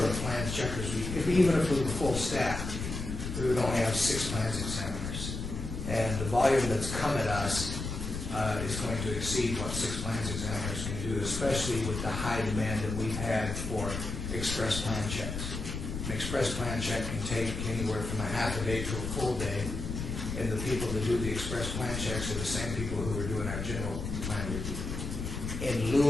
of plans checkers, even if we were full staff, we would only have 6 plans examiners. And the volume that's come at us is going to exceed what 6 plans examiners can do, especially with the high demand that we've had for express plan checks. An express plan check can take anywhere from a half a day to a full day, and the people that do the express plan checks are the same people who are doing our general plan review. In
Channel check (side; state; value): left; noise; rumble, 5 dB below the sound